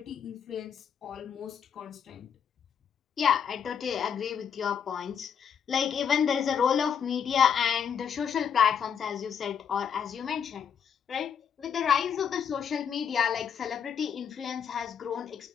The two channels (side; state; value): right; quieter; 7.6 dB